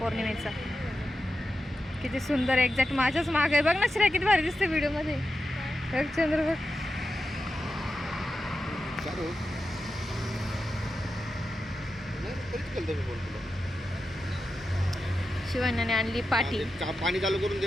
किती सुंदर, एक्झॅक्ट माझ्याच माग आहे. बघ ना श्रेया किती भारी दिसते व्हिडिओमध्ये. बघ चंद्र बघ. शिवान्याने आणली पाटी. पाणी चालू करून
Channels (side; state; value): both; normal; correlation 0.90